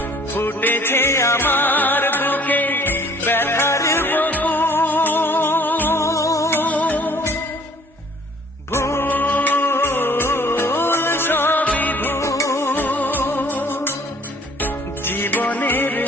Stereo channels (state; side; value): normal; both; correlation 0.55